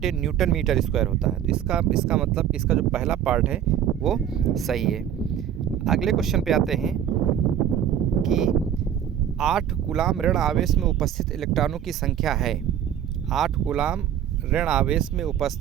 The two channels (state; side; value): quieter; left; 9.8 dB